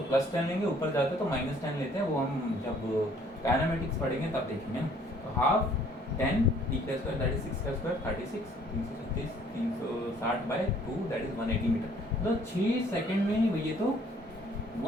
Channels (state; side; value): normal; both; correlation 0.59